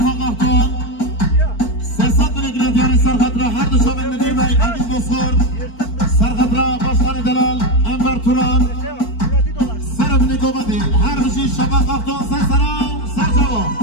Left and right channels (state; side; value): late; right; 4.5 ms